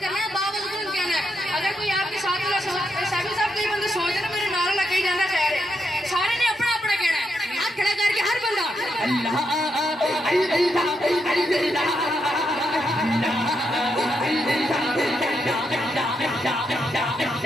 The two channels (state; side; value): normal; both; correlation 0.81